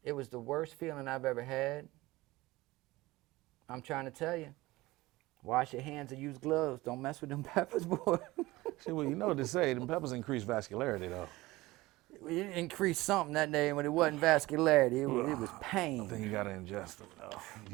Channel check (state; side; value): quieter; left; 19.5 dB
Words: It was the worst feeling I've ever had. I'm trying to tell you. Wash your hands and use gloves. Don't mess with them peppers, boy. See, well, you know what they say. Them peppers increase vascularity, though. It increased something that day when it wasn't vascularity. It was I pain. think you gotta ingest them, though.